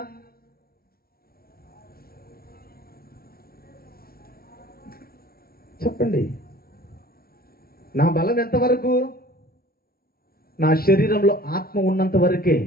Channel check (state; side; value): late; right; 0.44 ms